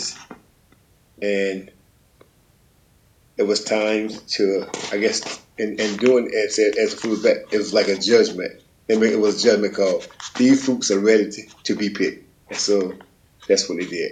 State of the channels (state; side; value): identical; both; correlation 1.00